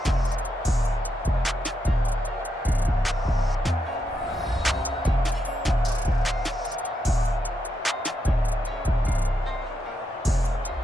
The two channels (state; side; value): normal; both; correlation 0.82